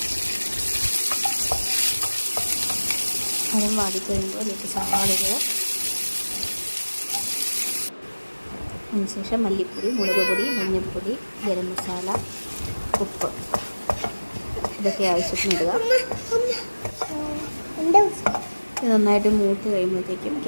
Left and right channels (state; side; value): inverted; both; correlation -1.00